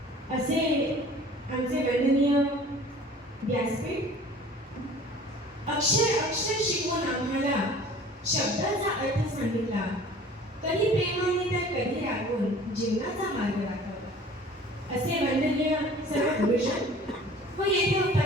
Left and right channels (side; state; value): both; normal; correlation 0.47